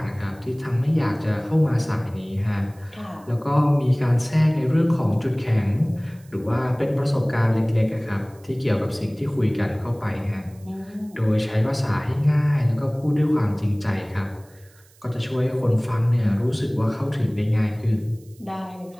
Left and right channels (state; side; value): noise; right; hiss, 29 dB below the sound